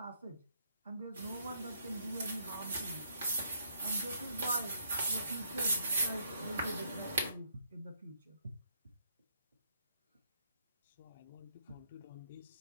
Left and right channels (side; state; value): both; inverted; correlation -0.70